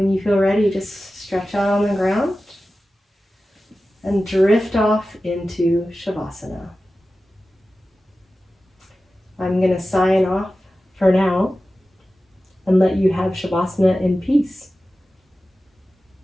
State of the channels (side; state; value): both; normal; correlation 0.95